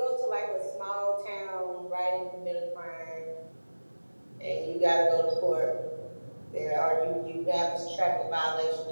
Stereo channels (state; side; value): inverted; both; correlation -1.00